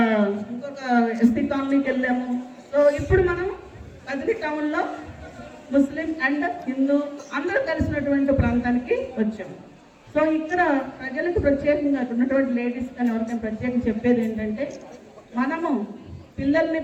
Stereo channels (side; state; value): both; identical; correlation 1.00